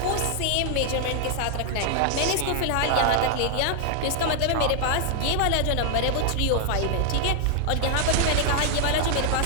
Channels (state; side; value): different; both; correlation 0.00